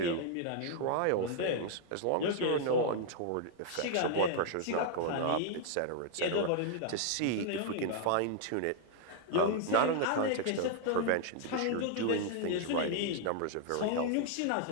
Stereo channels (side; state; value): both; different; correlation 0.00